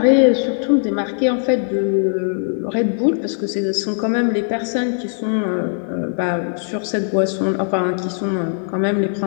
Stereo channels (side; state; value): right; silent; 66 dB below the other